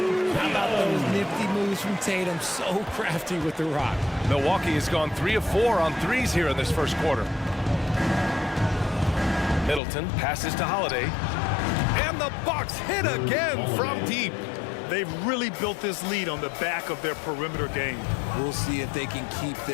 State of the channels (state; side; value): drops out; right; at 9.8 s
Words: How about those nifty moves from Tatum? So crafty with the rock. Milwaukee has gone 3 of 4 on threes here in this first quarter. Middleton passes to Holiday. And the Bucks hit again from deep. They've really built this lead on the back of their perimeter game. We'll see if they can keep